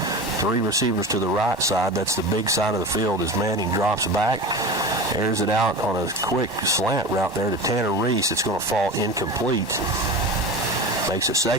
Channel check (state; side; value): normal; both; correlation 0.30